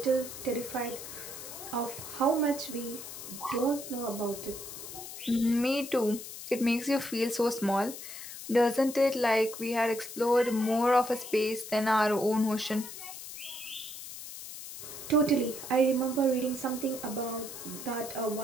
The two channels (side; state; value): left; noise; hiss, 11 dB below the sound